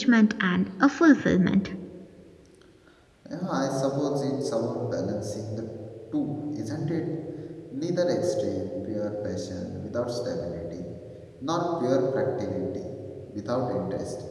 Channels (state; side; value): identical; both; correlation 1.00